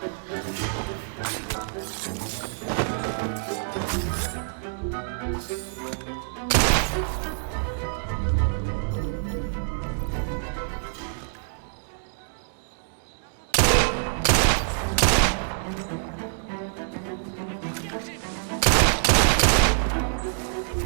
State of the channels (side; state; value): left; silent; digital silence